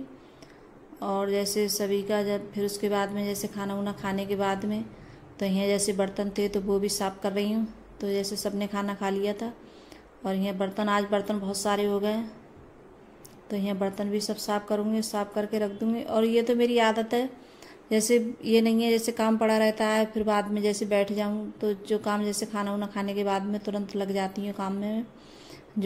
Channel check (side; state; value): both; identical; correlation 1.00